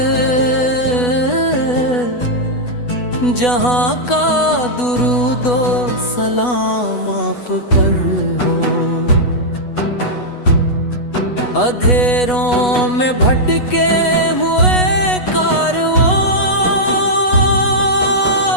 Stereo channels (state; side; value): late; right; 8.2 ms